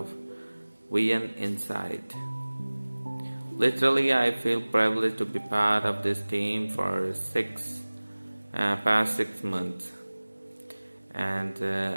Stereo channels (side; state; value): both; inverted; correlation -1.00